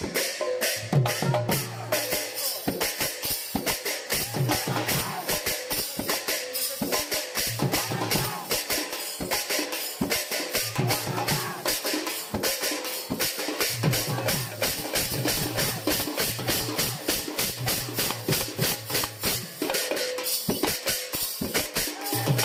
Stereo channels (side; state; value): both; identical; correlation 1.00